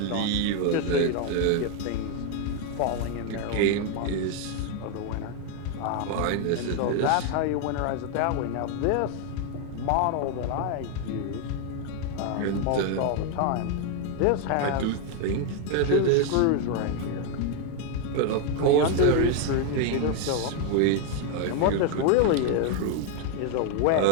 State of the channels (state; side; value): different; both; correlation 0.01